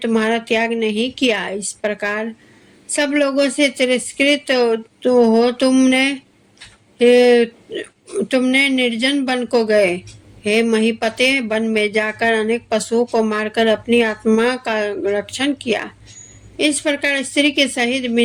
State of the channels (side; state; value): both; identical; correlation 1.00